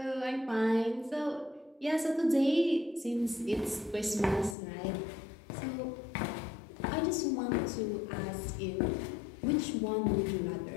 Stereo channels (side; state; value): right; drops out; at 4.5 s